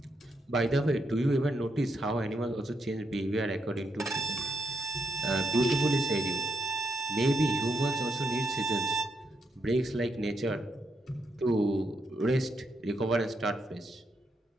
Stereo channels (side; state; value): both; normal; correlation 0.80